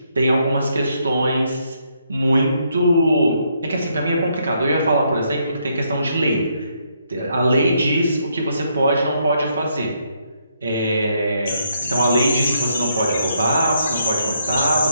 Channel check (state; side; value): inverted; both; correlation -0.74